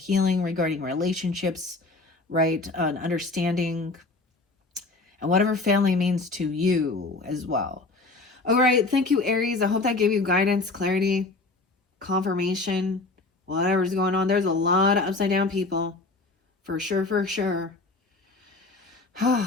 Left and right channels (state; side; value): quieter; right; 3.4 dB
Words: regarding relationships, right? Understanding, and whatever family means to you as well. All right, thank you, Aries. I hope that gave you guidance, clarity, confirmation, whatever's going on. There's a lot of upside down people. For sure, for sure.